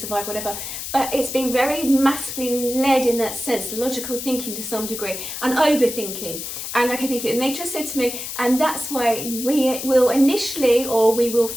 whatever. But it's been very masculine led in that sense, logical thinking to some degree, and overthinking. And okay, thank you. And they just said to me, and that's why we will initially, or we will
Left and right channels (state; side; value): noise; left; hiss, 7 dB below the sound